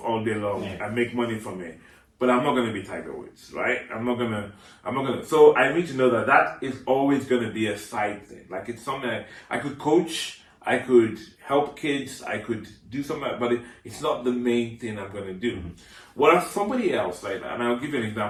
all day long and make money from it. But I'm not going to be Tiger Woods, right? I'm not going to. So I need to know that is always going to be a side thing. Like, it's something I could coach, I could help kids, I could do something, but it's not the main thing I'm going to do. Whereas somebody else, right? And I'll give you an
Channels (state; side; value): identical; both; correlation 1.00